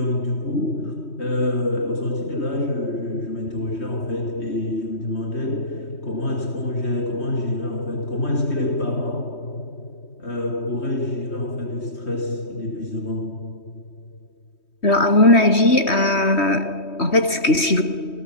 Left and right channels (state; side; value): late; right; 3.2 ms